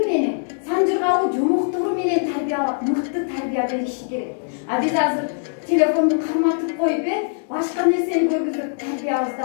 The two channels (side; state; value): right; silent; digital silence